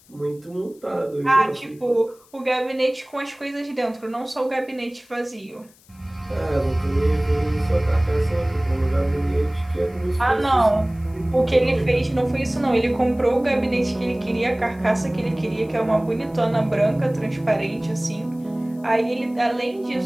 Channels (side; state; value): left; noise; hiss, 29 dB below the sound